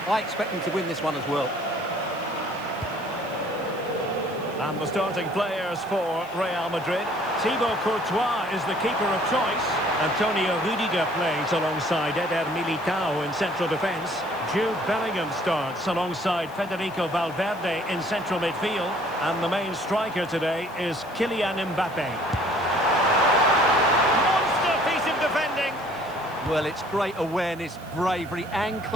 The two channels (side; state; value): right; noise; hiss, 24 dB below the sound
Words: I expect them to win this one as well. And the starting players for Real Madrid. Thibaut Courtois is the keeper of choice. Antonio Rudiger plays alongside Eder Militao in central defence. Jude Bellingham starts alongside Federico Valverde in central midfield. And the main striker today is Kylian Mbappe. Monster piece of defending. Well, it's great awareness, bravery and